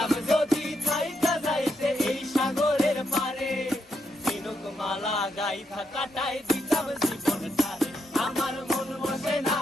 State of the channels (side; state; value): both; normal; correlation 0.79